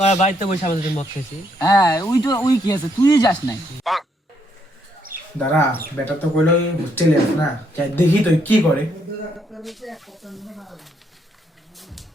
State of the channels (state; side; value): normal; both; correlation 0.73